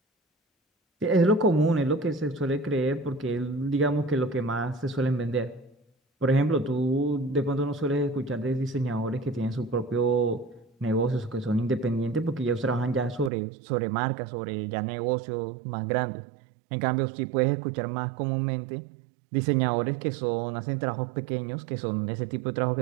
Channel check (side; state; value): left; drops out; at 13.3 s